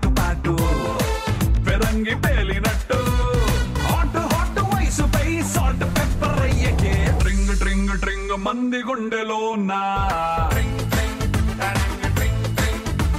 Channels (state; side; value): identical; both; correlation 1.00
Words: పాటు పెరంగి పేలినట్టు హాట్ హాట్ వయసుపై సాల్ట్ పెప్పర్ అయ్యకే ట్రింగ్ ట్రింగ్ ట్రింగ్ మంది గుండెలో నా